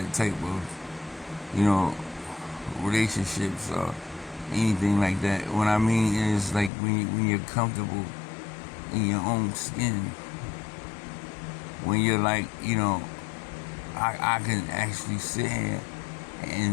type of, relationships or anything like that. What I mean is like when you're comfortable in your own skin, when you're like, I can actually sit here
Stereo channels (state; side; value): drops out; right; at 6.7 s